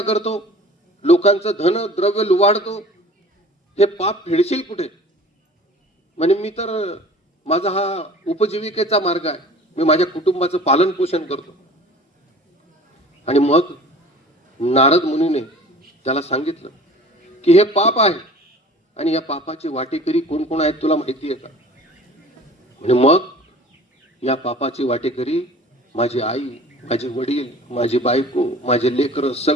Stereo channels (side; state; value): both; normal; correlation 0.45